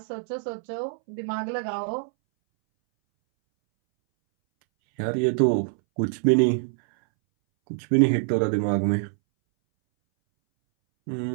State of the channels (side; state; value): left; silent; 62 dB below the other